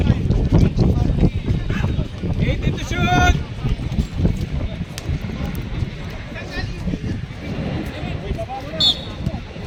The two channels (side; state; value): both; identical; correlation 1.00